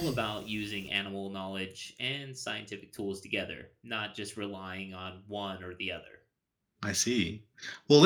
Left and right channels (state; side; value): identical; both; correlation 1.00